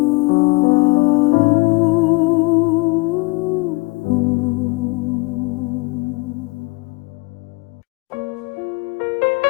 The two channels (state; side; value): quieter; right; 25.3 dB